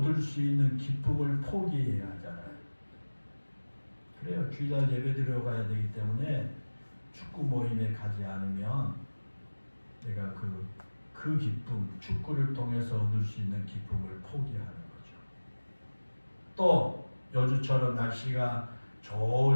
수 있는 기쁨을 포기해야 하잖아요. 그래요. 주일날 예배 드리러 가야 되기 때문에 축구 모임에 가지 않으면 내가 그 기쁨, 축구를 통해서 얻을 수 있는 기쁨을 포기하는 거죠. 또 요즘처럼 날씨가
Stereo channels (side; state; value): both; inverted; correlation -1.00